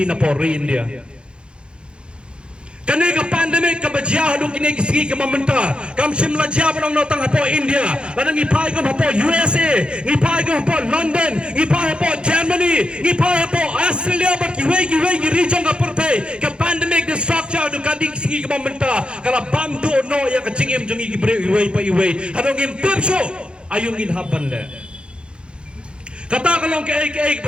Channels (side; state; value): left; late; 0.055 ms